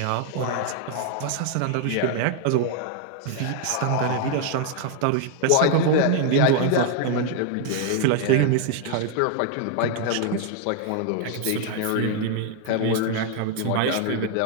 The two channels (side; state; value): both; different; correlation 0.00